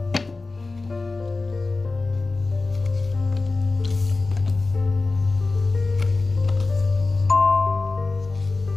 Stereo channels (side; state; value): right; quieter; 3.6 dB